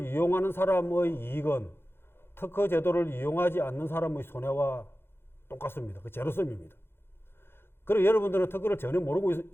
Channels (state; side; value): late; right; 0.11 ms